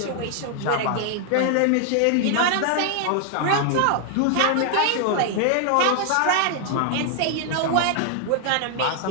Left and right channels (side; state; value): both; different; correlation 0.00